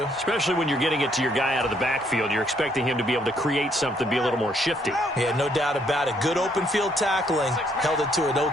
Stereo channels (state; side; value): normal; both; correlation 0.69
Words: Especially when you're getting it to your guy out of the backfield. You're expecting him to be able to create something, be a little more shifty. Yeah, no doubt about it. Good open field tackling held it to an